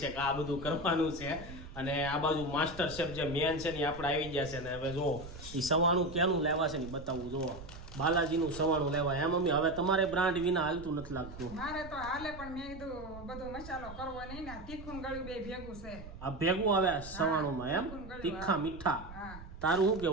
છે કે આ બધું કરવાનું છે. અને આ બાજુ માસ્ટર શેફ જે મેન છે ને આપણે આવી ગયા છે. ને હવે જો એ સવાણું ક્યાંનું લેવા છે ને બતાવવું. જુઓ બાલાજીનું સવાણું લેવા. એમ મમ્મી હવે તમારે બ્રાન્ડ વિના હાલતું નથી લાગતું. મારે તો હાલે પણ મેં કીધું બધો મસાલો કરવો નહીં ને તીખું ગળ્યું બે ભેગું છે. આ ભેગું આવે સવાણુંમાં એમ તીખા મીઠા. હા, તારું શું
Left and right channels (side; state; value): right; noise; rumble, 14 dB below the sound